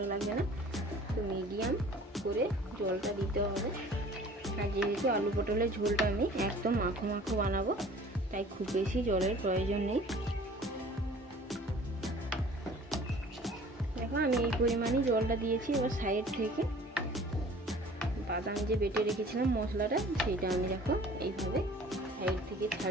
লাগবে না। তো মিডিয়াম করে জলটা দিতে হবে। আর যেহেতু আলু পটলের ঝোলটা আমি একদম মাখো মাখো বানাবো, তাই খুব বেশি জলের প্রয়োজন নেই। দেখো আমি এই পরিমাণই জলটা দিয়েছি। এবার সাইড থেকে বাদাম যে বেটে রেখেছিলাম মশলাটা, সেইটা আমি দেখো এইভাবে সাইড থেকে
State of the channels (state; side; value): normal; both; correlation 0.49